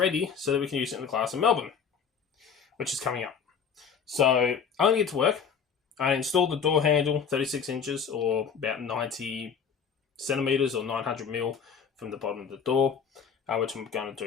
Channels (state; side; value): quieter; right; 6.7 dB